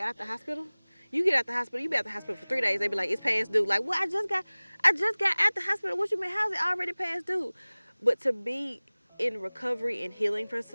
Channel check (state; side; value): inverted; both; correlation -1.00